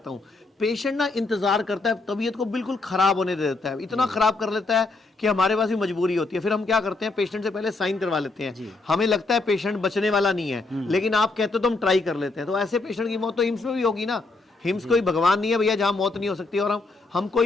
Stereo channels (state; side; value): quieter; right; 3.4 dB